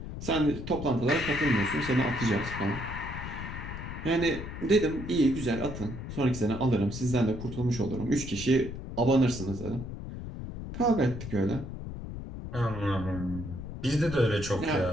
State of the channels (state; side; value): noise; left; rumble, 8 dB below the sound